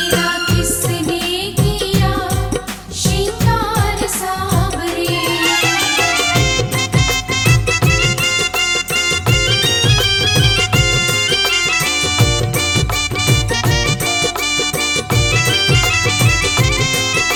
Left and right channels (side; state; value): both; identical; correlation 1.00